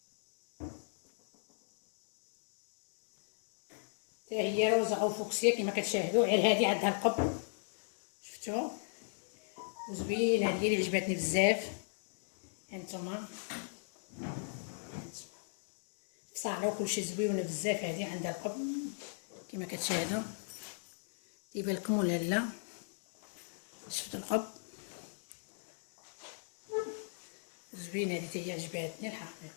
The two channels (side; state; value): right; silent; digital silence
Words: هي روزا او فوكسيا كما كتشاهدوا. غير هذه عندها القب، شفتوا وزوينه. هذه اللي عجبتني بزاف. هانتوما صاله وكلشي زويونه بزاف. هذه عندها القب كما كتشاهدوا. يبان لكم ولا لا؟ شفتوا القب زوينه. هذه هي عجبتني